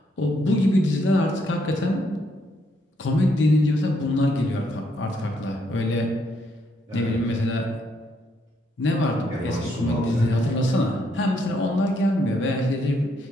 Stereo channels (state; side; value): normal; both; correlation 0.74